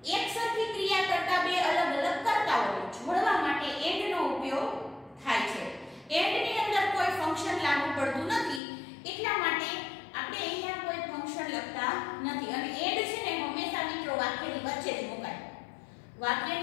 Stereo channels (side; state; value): right; drops out; at 8.6 s